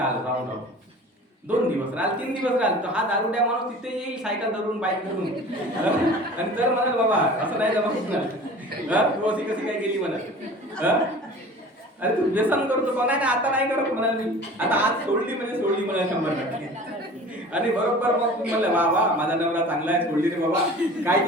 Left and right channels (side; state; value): both; normal; correlation 0.42